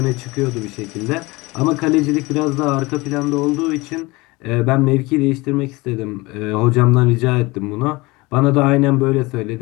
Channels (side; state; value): right; quieter; 23.0 dB